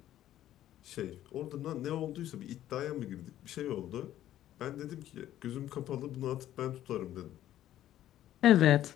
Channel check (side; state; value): right; quieter; 12.6 dB